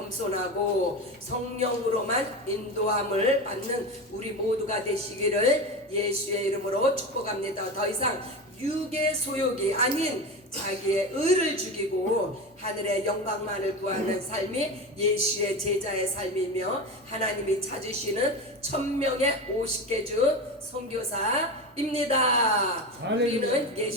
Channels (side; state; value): both; normal; correlation 0.23